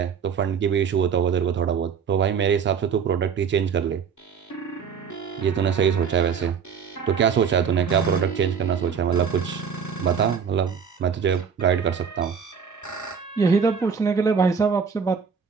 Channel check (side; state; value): left; quieter; 6.7 dB